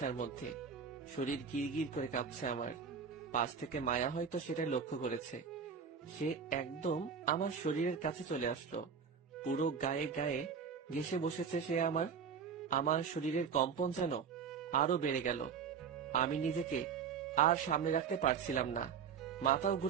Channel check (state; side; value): quieter; left; 6.5 dB